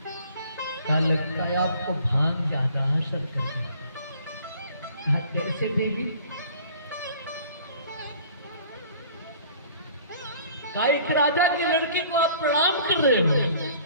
क्या लगता है आपको भांग ज्यादा असर कर गया? कैसे देवी? एक राजा की लड़की को आप प्रणाम कर रहे हो।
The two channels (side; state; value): both; inverted; correlation -0.52